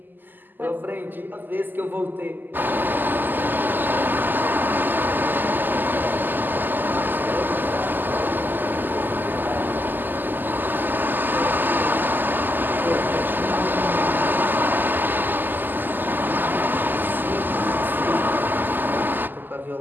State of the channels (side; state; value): left; late; 0.089 ms